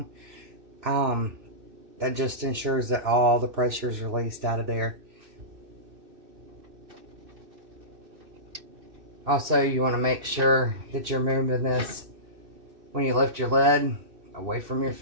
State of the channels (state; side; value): late; left; 2.6 ms